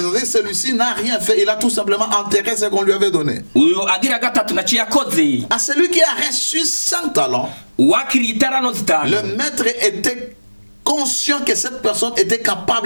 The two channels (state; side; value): inverted; both; correlation -1.00